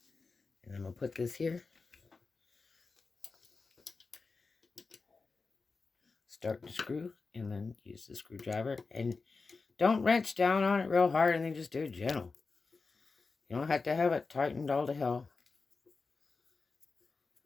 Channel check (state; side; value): quieter; right; 4.3 dB